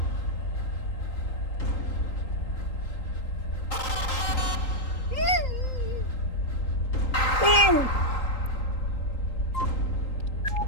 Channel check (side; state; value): right; late; 3.8 ms